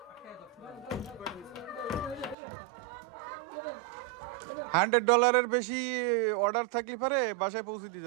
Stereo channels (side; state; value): left; drops out; at 2.4 s